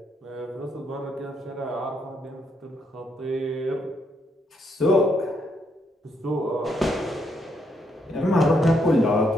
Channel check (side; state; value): both; normal; correlation 0.76